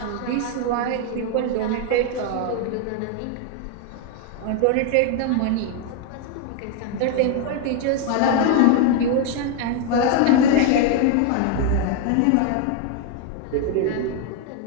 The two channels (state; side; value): different; both; correlation 0.01